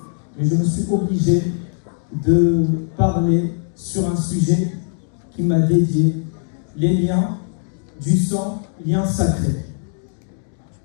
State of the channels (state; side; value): silent; right; digital silence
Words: mais je me suis obligé de parler sur un sujet qui m'a dédié, les liens du sang, liens sacrés.